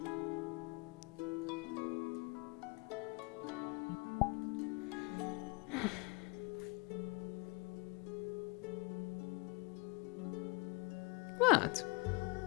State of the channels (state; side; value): quieter; right; 28.3 dB